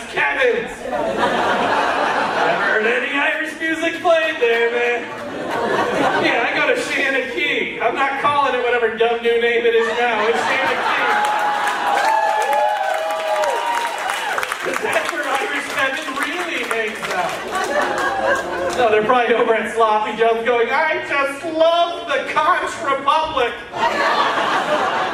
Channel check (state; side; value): identical; both; correlation 1.00